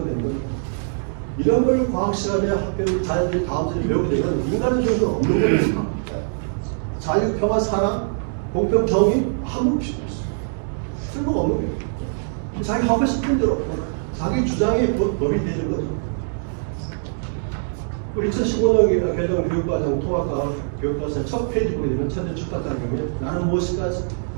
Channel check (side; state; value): left; silent; digital silence